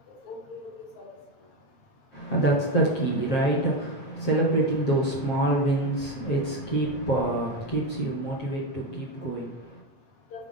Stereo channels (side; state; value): right; late; 7.5 ms